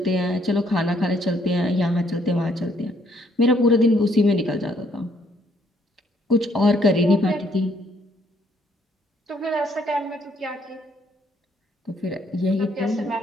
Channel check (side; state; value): both; normal; correlation 0.68